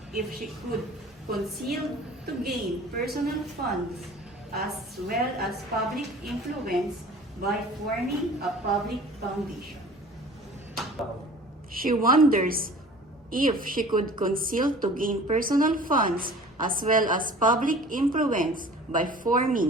if she could conceal to gain personal funds as well as public influence by forming a public foundation. She wonders if she could conceal to gain personal funds as well as public influence by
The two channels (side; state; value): both; normal; correlation 0.45